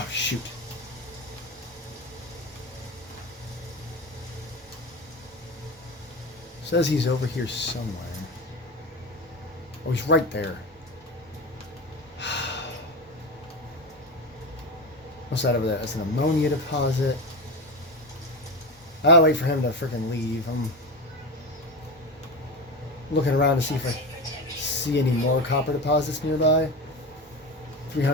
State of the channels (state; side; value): normal; both; correlation 0.22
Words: shoot. Says he's over here somewhere. Oh, he's right there. What's that over there? That's an ammonia deposit. I'll wait for him to freaking leave. I'm looking around to see if I see any more copper deposits nearby.